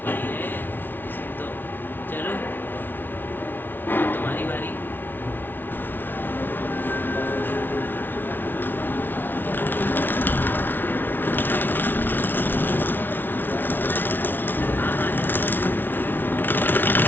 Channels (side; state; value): right; late; 0.094 ms